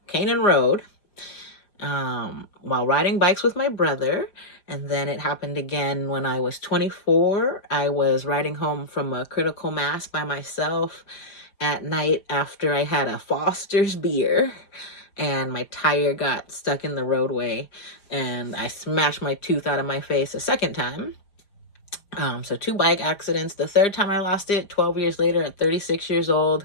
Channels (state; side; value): late; right; 5.0 ms